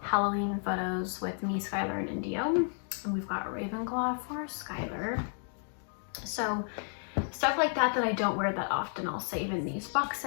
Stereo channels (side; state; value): right; silent; 56 dB below the other